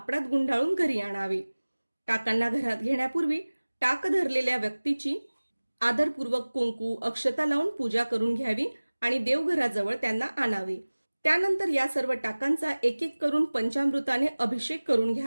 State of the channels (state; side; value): inverted; both; correlation -1.00